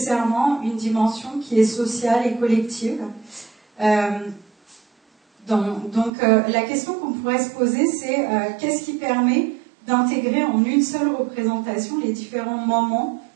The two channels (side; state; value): left; drops out; at 6.1 s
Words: une dimension qui est sociale et collective. La question qu'on pourrait se poser, c'est qu'est-ce qui permet d'intégrer en une seule représentation les différents moments